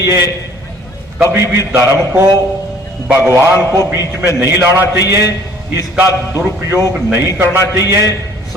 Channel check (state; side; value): normal; both; correlation 0.55